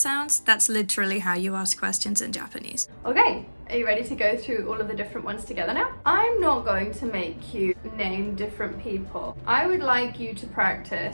that's literally how you ask questions in Japanese. Okay, are you ready to go through all of the different ones together now? I'm not going to make you name different people. I would like you to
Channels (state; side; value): inverted; both; correlation -1.00